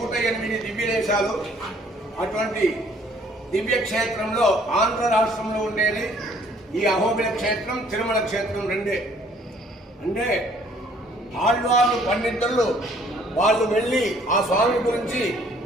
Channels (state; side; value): normal; both; correlation 0.60